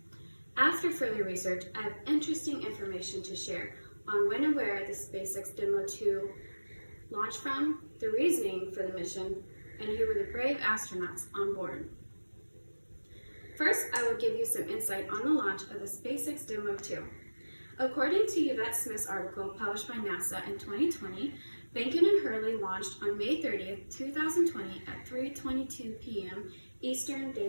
After further research, I have interesting information to share on when and where the SpaceX Demo 2 launched from, the reasoning for the mission, and who were the brave astronauts on board. First, I will give you some insight on the launch of the SpaceX Demo 2. According to Yvette Smith's article published by NASA in 2020, Behnken and Hurley launched on May 30th, 2020 at 3:22 p.m. Eastern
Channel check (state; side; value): inverted; both; correlation -1.00